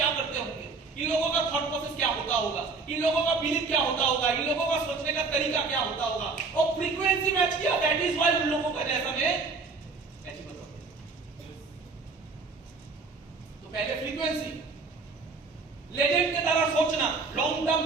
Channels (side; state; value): left; quieter; 4.3 dB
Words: करते होंगे, इन लोगों का थॉट प्रोसेस क्या होता होगा, इन लोगों का बिलीफ क्या होता होगा, इन लोगों का सोचने का तरीका क्या होता होगा, और फ्रीक्वेंसी मैच किया। दैट इज व्हाई उन लोगों का जैसा मैं अचीव होता हूं। तो पहले फ्रीक्वेंसी, लेजेंड की तरह सोचना, लॉन्ग टर्म